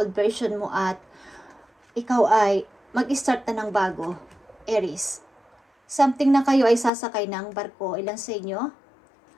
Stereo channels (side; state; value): right; drops out; at 6.9 s